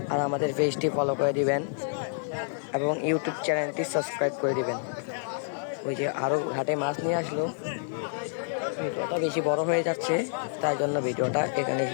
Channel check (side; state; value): right; silent; digital silence